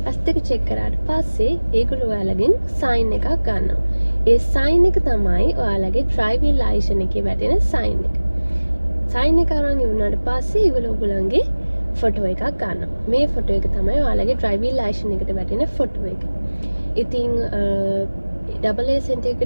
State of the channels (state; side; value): inverted; both; correlation -1.00